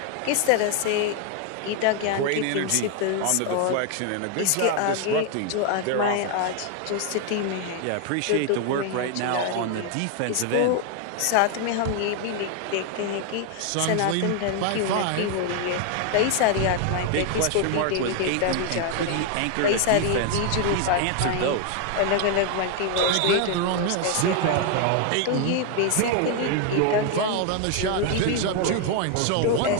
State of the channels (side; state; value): both; different; correlation 0.00